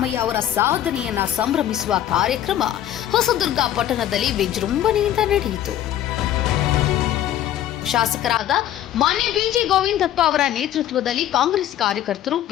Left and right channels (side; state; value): right; quieter; 11.9 dB